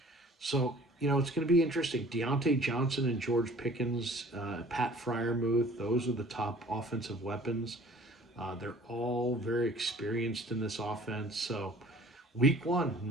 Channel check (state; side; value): normal; both; correlation 0.50